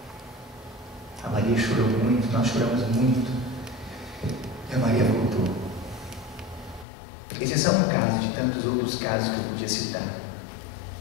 A Maria chorou muito, nós choramos muito. E a Maria voltou. Esse é só um caso de tantos outros casos que eu podia citar.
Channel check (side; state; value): right; drops out; at 6.9 s